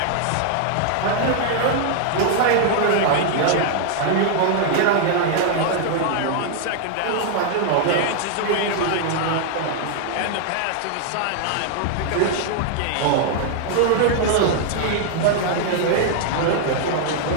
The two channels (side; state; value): both; different; correlation 0.00